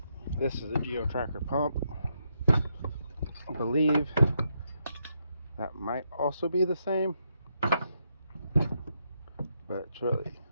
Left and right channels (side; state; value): both; inverted; correlation -0.80